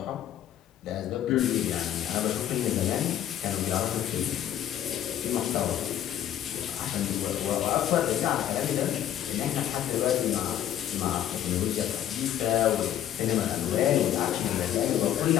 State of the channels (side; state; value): right; quieter; 11.1 dB